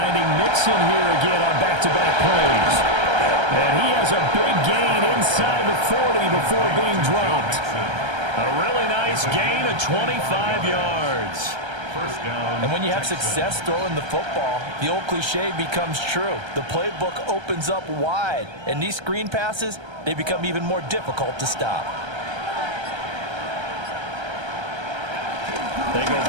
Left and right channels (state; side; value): late; left; 1.3 ms